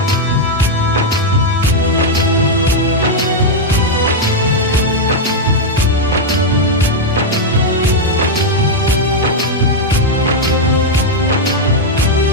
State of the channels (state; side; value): normal; both; correlation 0.00